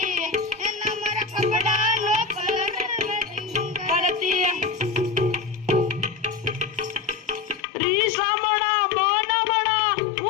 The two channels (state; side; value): drops out; right; at 7.7 s